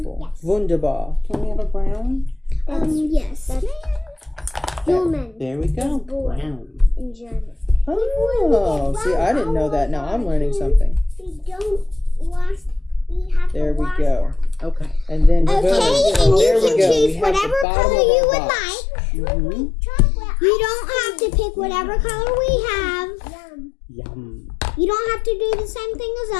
Wunderbar. Can we have a brown? Yes. Human There we go. boy. Brown. in German. Oh, see, I didn't know that. Now I'm learning something. We don't wash. We have There to we wash go. Okay. And then Okay, boom. and There you we can go. We choose have the whatever bottom color of you our would box. like. Mm-hmm. Chocolate. You don't have to pick whatever color we have. Yum. Yum. You don't have to do the same thing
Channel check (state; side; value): drops out; right; at 17.7 s